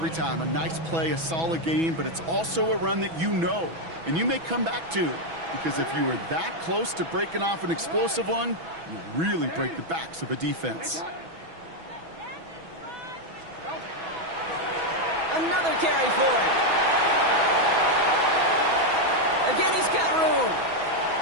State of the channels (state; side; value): late; left; 6.1 ms